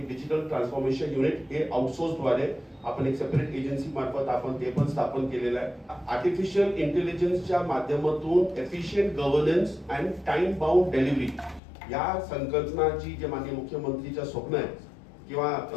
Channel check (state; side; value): drops out; right; at 11.6 s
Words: डिजिटल ट्रान्सफॉर्मेशन युनिट हे आउटसोर्स द्वारे आपण एक सेपरेट एजन्सी मार्फत आपण ते पण स्थापन केलेलं आहे। आर्टिफिशियल इंटेलिजन्सच्या माध्यमातून efficient governance and time bound delivery या संकल्पनाची जे माननीय मुख्यमंत्रीचं स्वप्न आहे किंवा